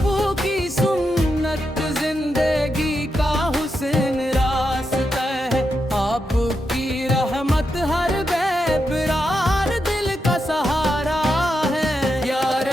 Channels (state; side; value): normal; both; correlation 0.85